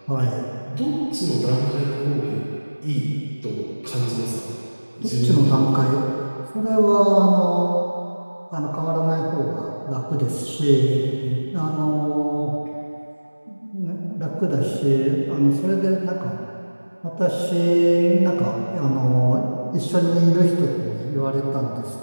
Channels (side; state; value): both; inverted; correlation -1.00